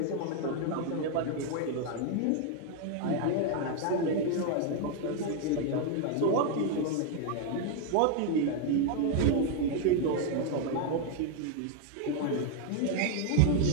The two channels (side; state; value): both; different; correlation 0.00